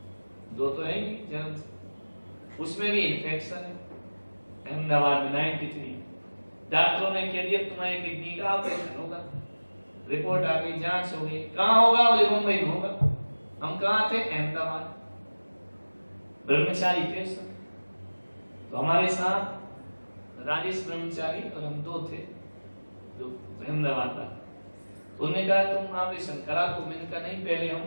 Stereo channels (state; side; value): inverted; both; correlation -1.00